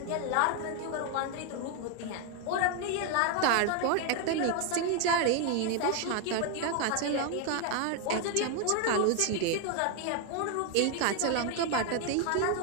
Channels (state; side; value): different; both; correlation 0.01